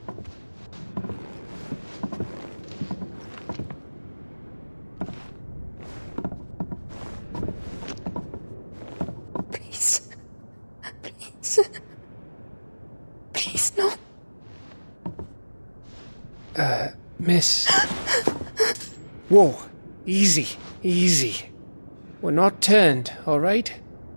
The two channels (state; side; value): inverted; both; correlation -1.00